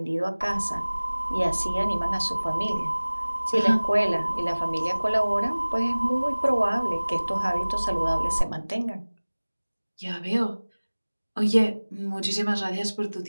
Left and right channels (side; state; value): both; inverted; correlation -1.00